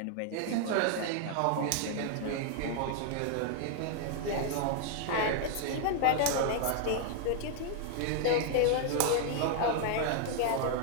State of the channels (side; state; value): both; different; correlation 0.00